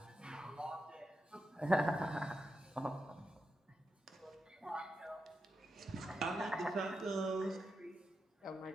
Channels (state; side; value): normal; both; correlation 0.87